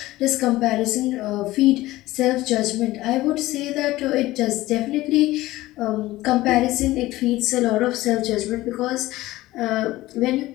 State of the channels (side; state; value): right; quieter; 17.4 dB